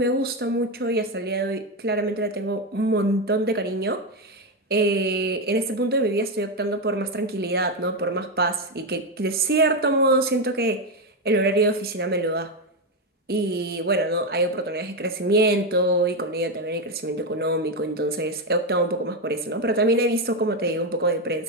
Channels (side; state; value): both; normal; correlation 0.09